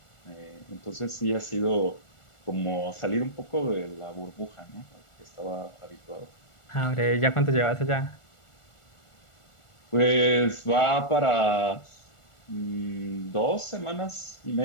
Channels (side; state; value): right; late; 1.4 ms